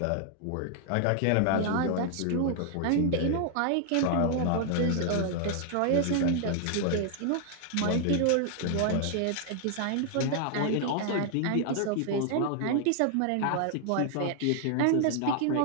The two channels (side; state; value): both; different; correlation 0.00